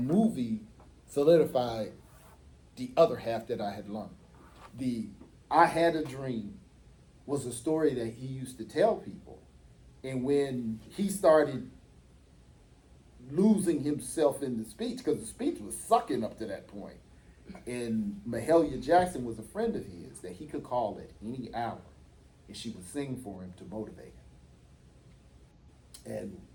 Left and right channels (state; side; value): identical; both; correlation 1.00